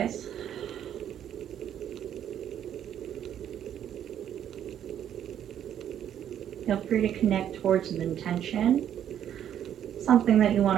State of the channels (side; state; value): left; quieter; 10.0 dB